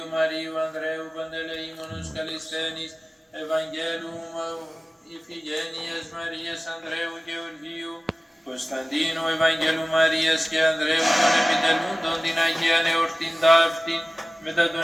Μαρίου Ανδρέου Παντελεήμονος Καλισθένης, Ευαγγέλου Ιφηγένειας Μαρίας Ανδρέου Γεωργίου, Κωνσταντίνου Ευαγγέλου Μαρίας και Ανδρέου των επιτελούντων την Αγία Εορτήν ταύτην μετά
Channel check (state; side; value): normal; both; correlation 0.97